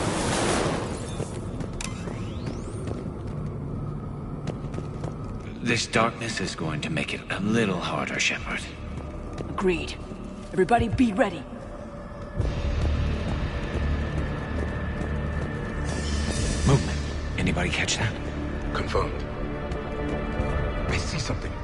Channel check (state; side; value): identical; both; correlation 1.00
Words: This darkness is going to make it a little harder, Shepard. Agreed. Everybody be ready. Movement. Anybody catch that? Confirmed. I see something.